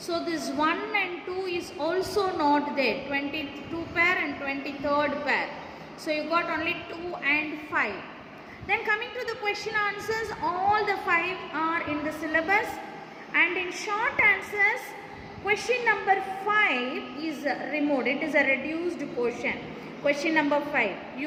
this 1 and 2 is also not there, 22 pair and 23rd pair. So you got only 2 and 5. Then coming to the question answers, all the 5 are in the syllabus, and in short answers question number 5 is removed, it is a reduced portion. Question number 5,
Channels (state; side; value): identical; both; correlation 1.00